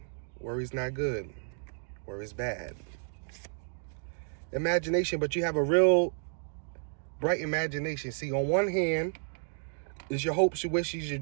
Worry's not good. Worry's bad. Imagination, but you have a real bright imagination. See, on one hand is your hopes, your wishes, your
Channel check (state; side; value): silent; left; digital silence